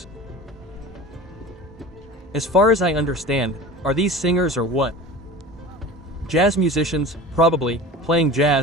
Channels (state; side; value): normal; both; correlation 0.36